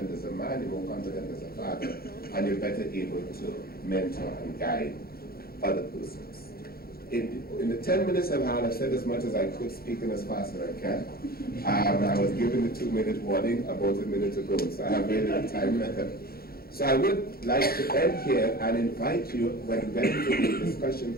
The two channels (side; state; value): right; late; 0.44 ms